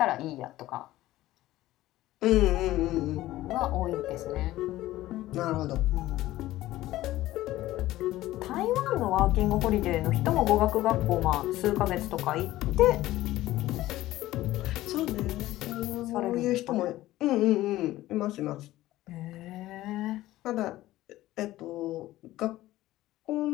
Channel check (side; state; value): right; quieter; 15.9 dB